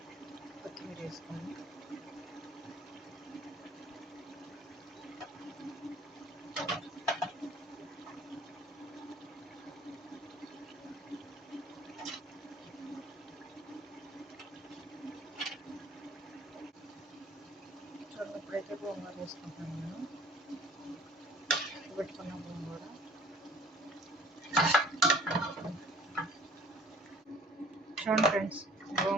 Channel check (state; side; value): normal; both; correlation 0.51